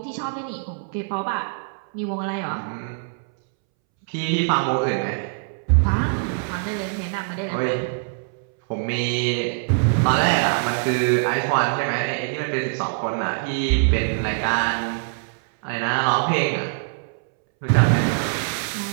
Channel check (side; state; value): left; silent; 63 dB below the other